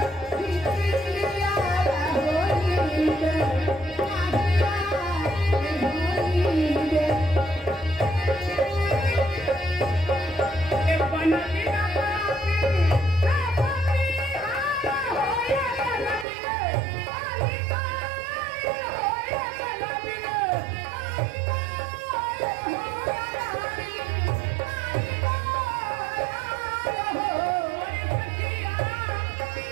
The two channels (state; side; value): drops out; left; at 16.2 s